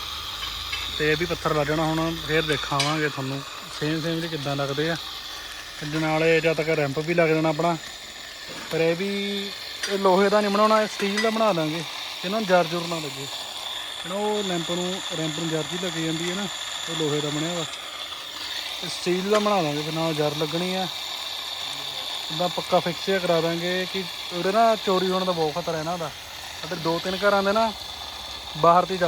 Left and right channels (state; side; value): identical; both; correlation 1.00